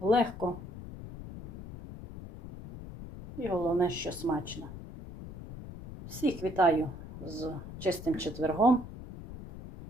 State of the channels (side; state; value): left; noise; rumble, 11 dB below the sound